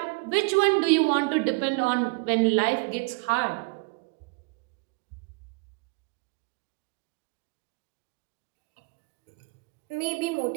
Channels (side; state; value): left; quieter; 30.2 dB